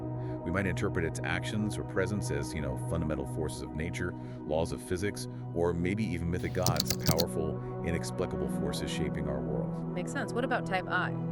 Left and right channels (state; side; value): identical; both; correlation 1.00